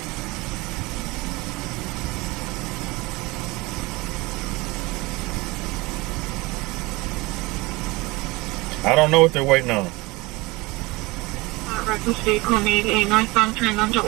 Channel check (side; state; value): left; quieter; 23.0 dB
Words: I don't know what they're waiting on. Records vehicle made a northbound turn onto